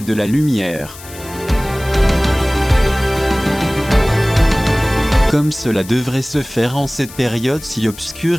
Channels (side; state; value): left; noise; hiss, 17 dB below the sound